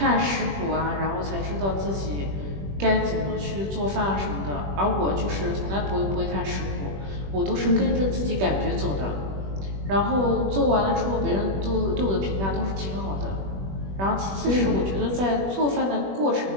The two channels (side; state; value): left; late; 21 ms